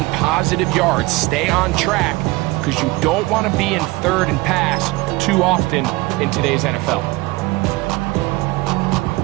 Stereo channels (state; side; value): quieter; left; 22.0 dB